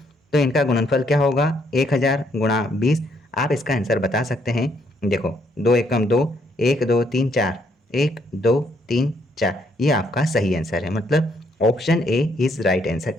तो इनका गुणनफल क्या होगा, 1000 गुणा 20। आप इसका आंसर बता सकते हैं। देखो 2 एकम 2, 1 2 3 4, 1 2 3 4, ये आपका सही आंसर है, मतलब option A is right answer.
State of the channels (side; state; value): both; normal; correlation 0.71